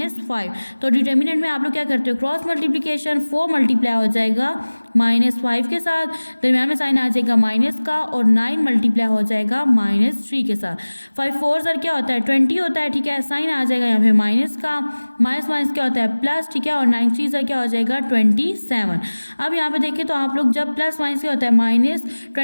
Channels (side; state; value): both; inverted; correlation -1.00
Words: तो डिटर्मिनेंट में आप लोग क्या करते हो, क्रॉस मल्टीप्लीकेशन, 4 मल्टीप्लाई हो जाएगा -5 के साथ, दरम्यान में साइन आ जाएगा माइनस का, और 9 मल्टीप्लाई हो जाएगा -3 के साथ। 5 4 सर क्या होता है 20 होता है, ठीक है, साइन आ जाएगा यहाँ पे माइनस का, माइनस माइनस क्या होता है प्लस, ठीक है, और 9 3 सर क्या हो जाएगा 27। अब यहाँ पे देखिए तो आप लोग जब प्लस माइनस क्या होता है